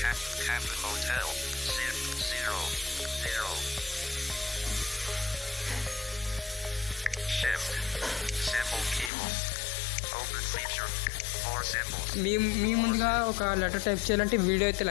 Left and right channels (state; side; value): drops out; right; at 9.1 s